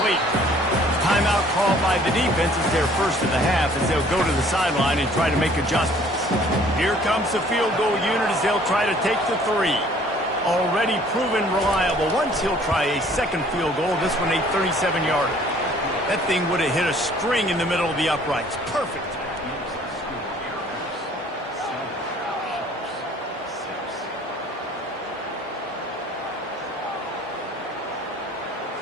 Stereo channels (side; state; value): both; normal; correlation 0.56